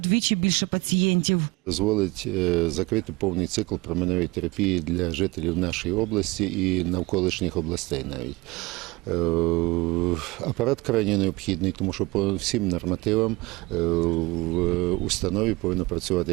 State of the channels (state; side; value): quieter; left; 23.0 dB